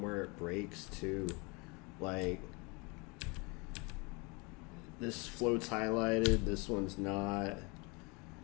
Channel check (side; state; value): right; quieter; 29.1 dB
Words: where it breaks too. Like, this float's highlighted, this one's not.